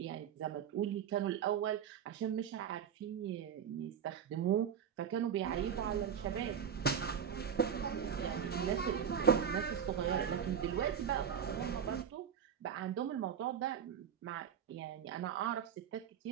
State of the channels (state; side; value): quieter; left; 8.0 dB